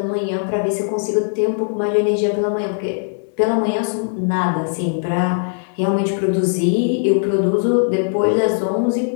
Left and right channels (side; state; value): right; silent; digital silence